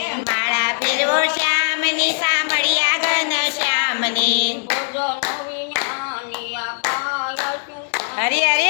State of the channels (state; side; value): silent; right; digital silence